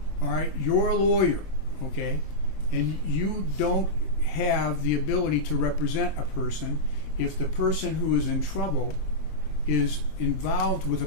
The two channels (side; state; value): right; late; 25 ms